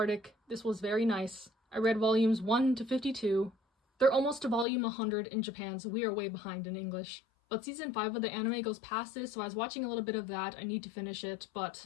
This was very nice. I read volumes 1 to 52. They're almost to volume 100 in Japan, so we are way behind in English. But season 5 of the anime goes past this, so I was watching a little bit of that. I need to finish it,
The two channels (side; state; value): right; drops out; at 4.7 s